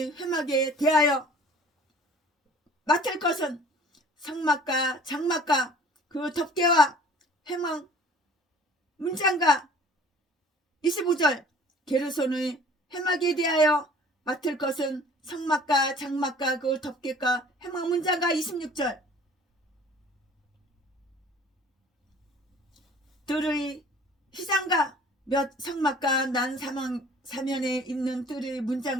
회막에 대하여 맡을 것은 성막과 장막과 그 덮개와 회막 문장과 25절. 게르손의 회막에 대하여 맡을 것은 성막과 장막과 그 덮개과 회막 문장과 26절. 뜰의 휘장과 몇 성막과 난 사면에 있는 뜰의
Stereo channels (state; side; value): normal; both; correlation 0.49